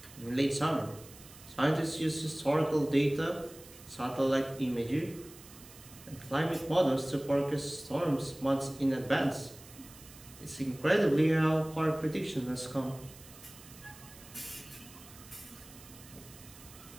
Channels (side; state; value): right; noise; hiss, 19 dB below the sound